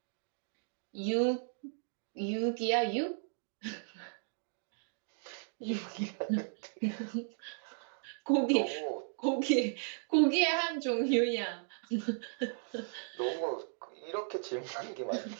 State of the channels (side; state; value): left; silent; digital silence